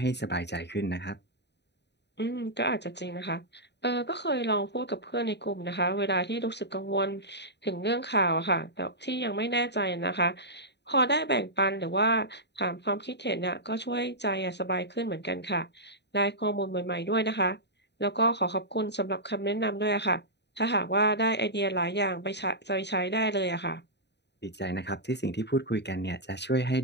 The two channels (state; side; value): late; right; 0.50 ms